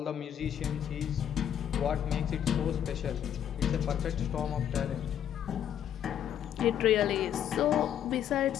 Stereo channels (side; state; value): right; quieter; 9.8 dB